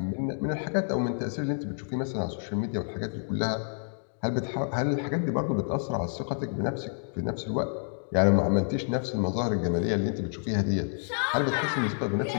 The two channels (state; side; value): silent; right; digital silence